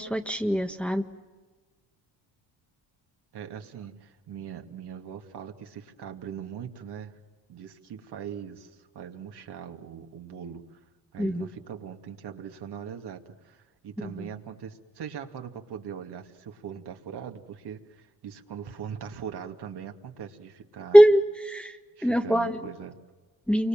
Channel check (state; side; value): normal; both; correlation 0.91